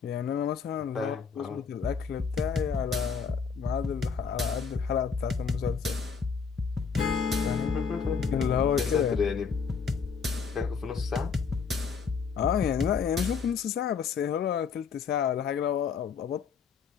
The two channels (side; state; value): right; quieter; 5.9 dB